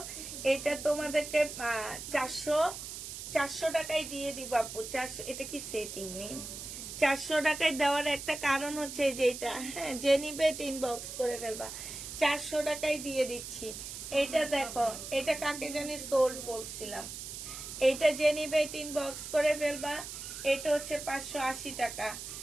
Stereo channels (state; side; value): noise; right; hiss, 9 dB below the sound